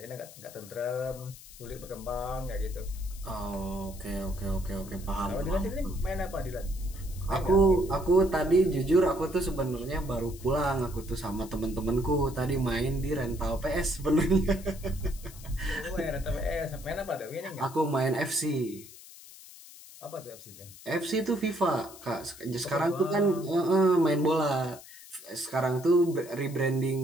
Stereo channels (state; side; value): noise; left; hiss, 18 dB below the sound